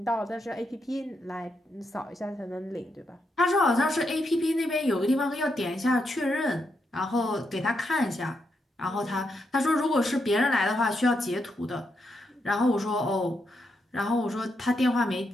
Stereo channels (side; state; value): both; normal; correlation 0.82